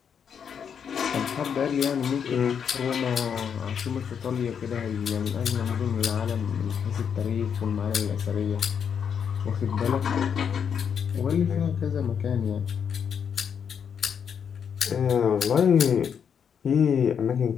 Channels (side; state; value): right; quieter; 7.4 dB